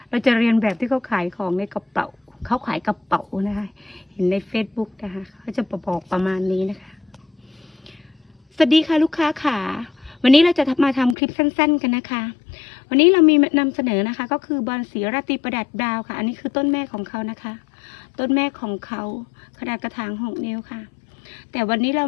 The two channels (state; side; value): drops out; right; at 11.2 s